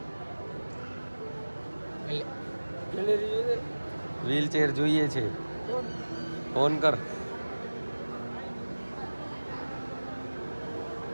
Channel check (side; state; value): both; inverted; correlation -1.00